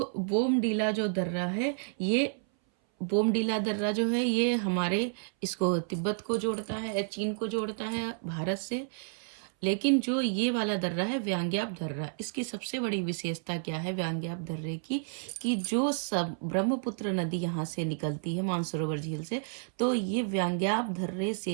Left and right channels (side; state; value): left; silent; 57 dB below the other